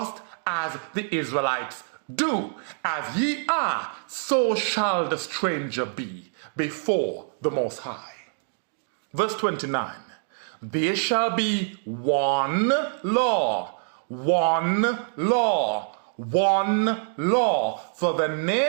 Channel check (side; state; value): left; silent; 60 dB below the other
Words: as the Israelites do. As ye are, so shall the stranger be before the Most High. Verse 29, "There shall be one law, one law, one law for the